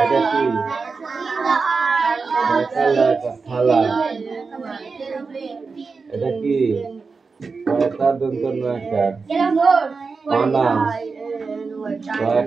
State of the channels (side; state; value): left; quieter; 4.6 dB